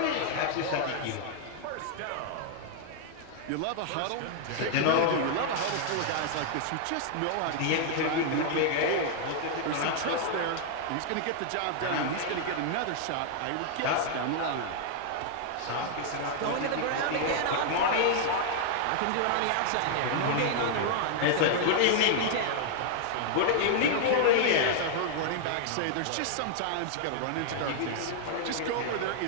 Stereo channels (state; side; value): different; both; correlation -0.01